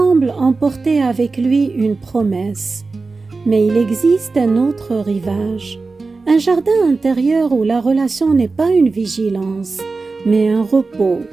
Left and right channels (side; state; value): left; quieter; 3.9 dB